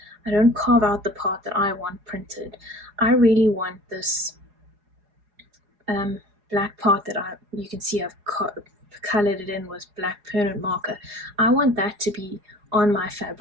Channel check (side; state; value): left; late; 4.8 ms